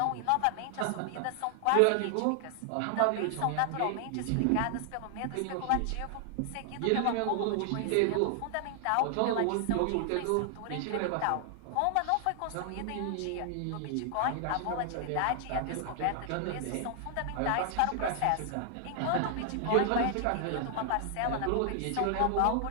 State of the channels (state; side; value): different; both; correlation 0.00